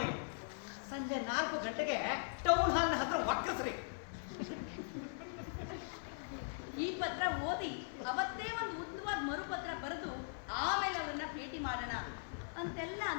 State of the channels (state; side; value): silent; right; 51 dB below the other